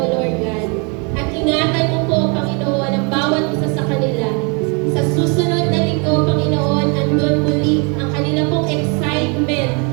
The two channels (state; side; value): quieter; left; 33.8 dB